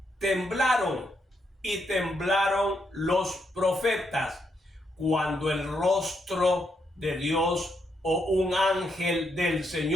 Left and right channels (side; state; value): both; normal; correlation 0.79